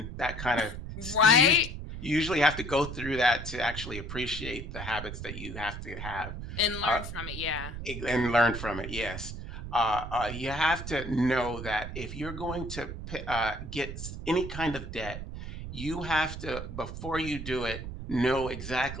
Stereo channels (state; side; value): noise; right; rumble, 8 dB below the sound